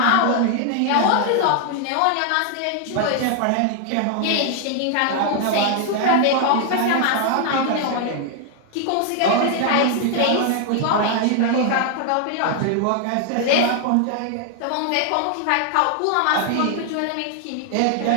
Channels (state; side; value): different; both; correlation 0.00